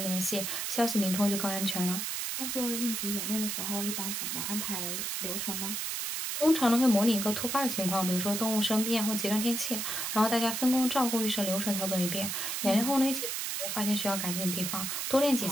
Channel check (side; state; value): right; noise; hiss, 2 dB below the sound